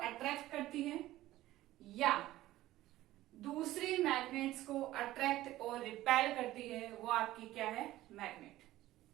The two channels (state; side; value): quieter; left; 15.7 dB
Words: अट्रैक्ट करती है या दूसरी मैग्नेट्स को अट्रैक्ट और रिपेल करती है। वो आपकी क्या है? Magnet.